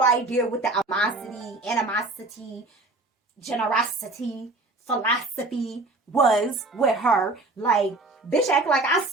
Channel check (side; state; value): left; quieter; 3.0 dB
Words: idea what the animosity, generosity, philosophy was with her. Like, bitch act like I